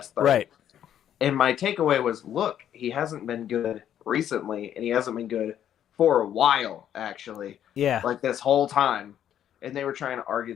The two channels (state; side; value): quieter; right; 10.3 dB